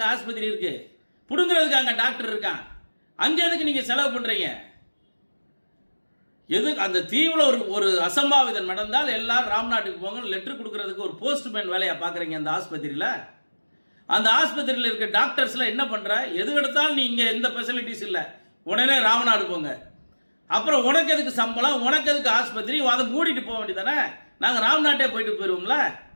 ஆஸ்பத்திரி இருக்குது, பிடுங்குறதுக்கு அங்கே டாக்டர் இருக்கான். அங்கே எதுக்கு நீங்கள் செலவு பண்ணுறீங்க? எதுக்கு அந்த தீவில் ஒரு அசம்பாவிதம் நடந்தால் எல்லாரும் ராம்நாட்டுக்கு போங்க லெட்டர் கொடுக்கறதுக்கு ஒரு போஸ்ட்மேன் வேலையை பார்க்குறீங்க அந்த ஆஸ்பத்திரியில். அந்த ஆஸ்பத்திரியில் இருக்க டாக்டர்ஸ்லாம் என்ன பண்ணுற? எது எடுத்தாலும் நீ இங்கே எந்த ஃபெசிலிட்டிஸ் இல்லை, உடனே ராமநாடு போங்க. அப்புறம் உனக்கு எதுக்கு சம்பளம், உனக்கு எதுக்கு ஆஸ்பத்திரி? அதை மூடிட்டு போக வேண்டியதானே. நாங்கள் ராம்நாட்டே போயிட்டு போயிடுவோம்ல.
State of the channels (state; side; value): inverted; both; correlation -1.00